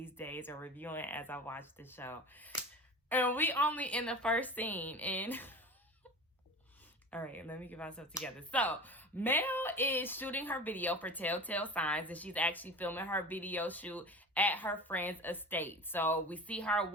days or reviewing as I watch the show. And we only in the first scene, and all right, let me get myself together. So, Mel is shooting her video for Telltale Signs, and she's actually filming her video shoot at her friend's estate. So, we see her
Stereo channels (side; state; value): both; normal; correlation 0.34